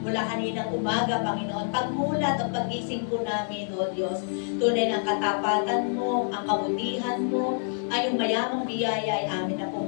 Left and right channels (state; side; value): silent; right; 60 dB below the other